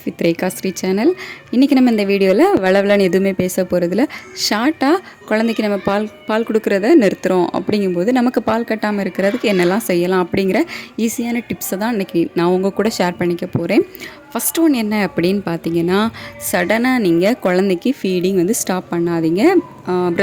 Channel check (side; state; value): both; identical; correlation 1.00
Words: with Rekha Sri channel. இன்றைக்கி நம்ம இந்த வீடியோவில் வளவலன்னு எதுவுமே பேச போகிறதில்ல. ஷார்ட்டாக குழந்தைக்கு நம்ம பால் கொடுக்குறத நிறுத்துகிறோம் அப்படிங்கும்போது நமக்கு பால் கட்டாமல் இருக்கிறதுக்கு என்னெல்லாம் செய்யலாம் அப்படிங்கிற ஈஸியான டிப்ஸை தான் இன்றைக்கி நான் உங்கள் கூட ஷேர் பண்ணிக்க போகிறேன். ஃபஸ்ட் ஒன் என்ன அப்படின்னு பார்த்தீங்கன்னா, சடனாக நீங்கள் குழந்தைக்கு ஃபீடிங் ஸ்டாப் பண்ணாதீங்க.